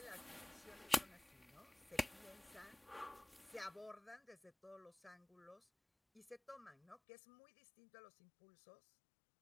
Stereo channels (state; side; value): drops out; right; at 7.0 s